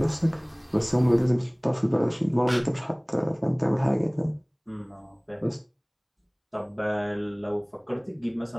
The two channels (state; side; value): identical; both; correlation 1.00